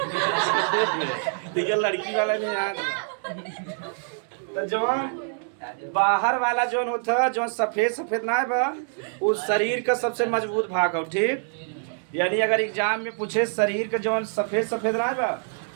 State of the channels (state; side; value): silent; left; digital silence